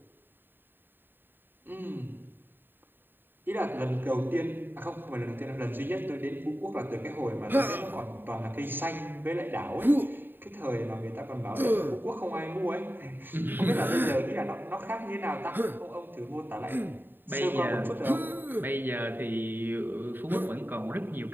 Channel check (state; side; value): late; left; 0.095 ms